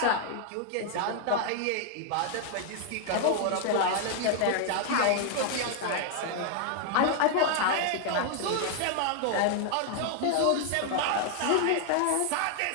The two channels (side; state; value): both; different; correlation 0.00